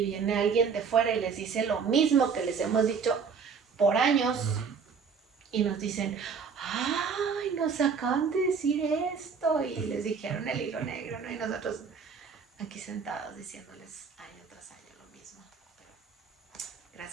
viene alguien de fuera y les dice lo mismo que les hemos dicho por años. Uh-huh. Y nos dicen, nos acaban de decir esto, y les dijeron el hilo negro, ¿no? Y nosotros aquí sentados diciéndoles año tras año lo mismo. Pero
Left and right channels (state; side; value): quieter; left; 5.9 dB